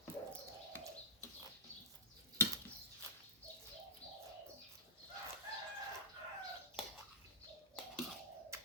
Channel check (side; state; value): both; normal; correlation -0.14